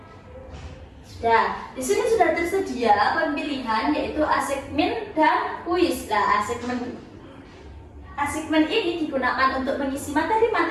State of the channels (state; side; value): identical; both; correlation 1.00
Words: Di sini sudah tersedia pemilihan yaitu assignment dan kuis. Assignment ini digunakan untuk mengisi